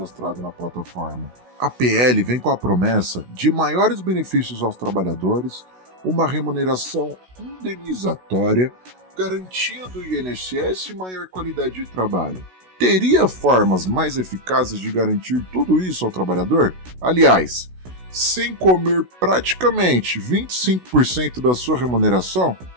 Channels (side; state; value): left; late; 16 ms